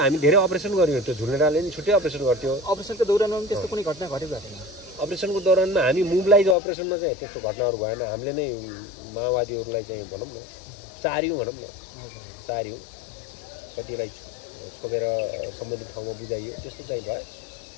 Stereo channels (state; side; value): drops out; right; at 6.6 s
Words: हामी धेरै अपरेसन गर्यौँ त्यो झुलेडाले नि छुट्टै अपरेसन गर्थ्यो अपरेसनको दौरानमा पनि त्यस्तो कुनै घटना घटेको छैन अपरेसनको दौरानमा हामी मोबिलाइज अपरेसनमा चाहिँ त्यस्तो घटनाहरू भएन हामीले नै माओवादीहरूलाई चाहिँ भनौँ न चार्यौँ भनौँ न चार्यौँ कतिलाई छोपेर सम्बन्धित ठाउँमा बुझाइयो त्यस्तो चाहिँ भयो